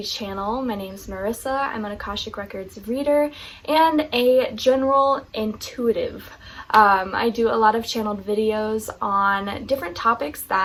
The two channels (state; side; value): identical; both; correlation 1.00